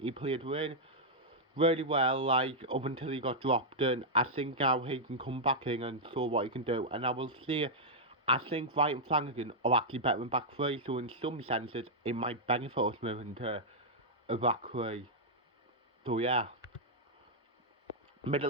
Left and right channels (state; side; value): normal; both; correlation -0.06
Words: played really well, like, up until he got dropped, and I think now he can come back in and show what he can do. And I will say, I think Wright and Flanagan are actually better than back three, so in some senses, it might benefit us moving to a back three. So yeah.